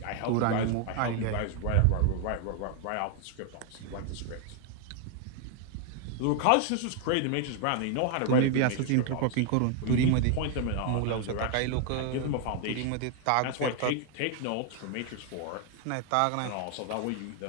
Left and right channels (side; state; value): both; different; correlation 0.00